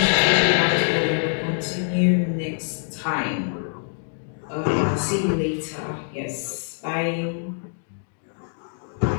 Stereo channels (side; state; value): right; silent; digital silence